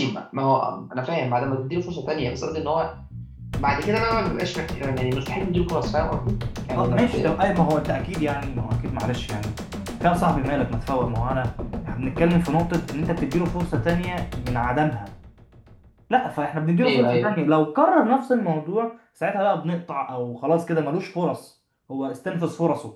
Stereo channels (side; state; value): both; identical; correlation 1.00